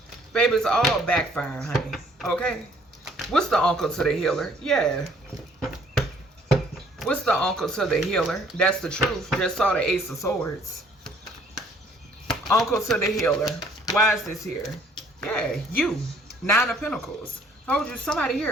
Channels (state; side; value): normal; both; correlation 0.60